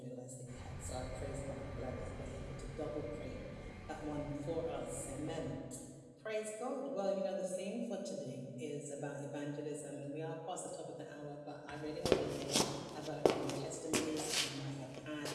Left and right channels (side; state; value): both; identical; correlation 1.00